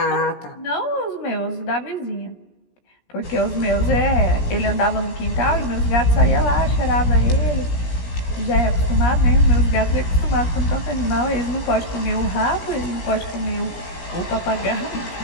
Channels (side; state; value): right; late; 17 ms